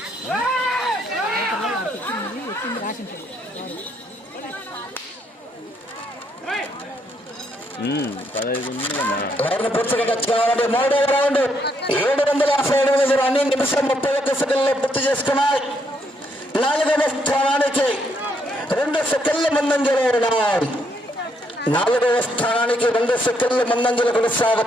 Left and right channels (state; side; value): normal; both; correlation 0.74